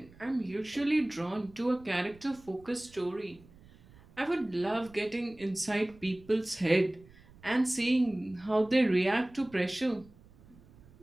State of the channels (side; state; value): right; noise; rumble, 25 dB below the sound